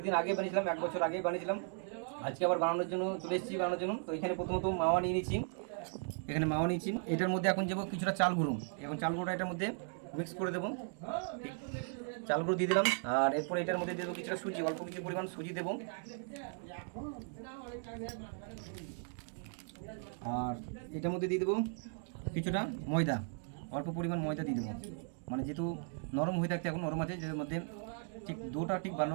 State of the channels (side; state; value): left; silent; 53 dB below the other